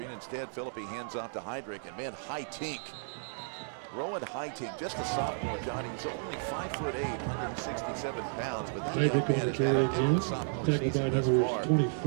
Instead, Philippi hands off to Heydrich. And man, Hightink. Rowan Hightink, just a sophomore, Johnny. He's only 5'8", 167 pounds, but that young man has had a good sophomore season thus far. And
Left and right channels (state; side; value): silent; left; digital silence